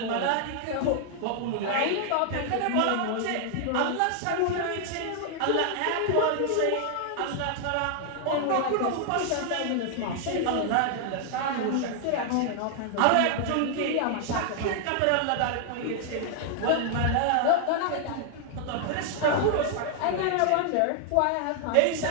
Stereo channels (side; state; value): both; different; correlation 0.00